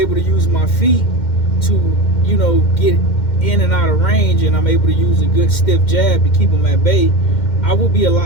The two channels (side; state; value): right; late; 2.1 ms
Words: to use my feet to, get in and out of range, and I'm able to use a good stiff jab to keep him at bay. I will be a